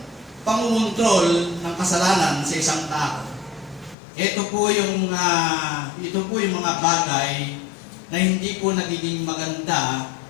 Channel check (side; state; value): right; drops out; at 4.0 s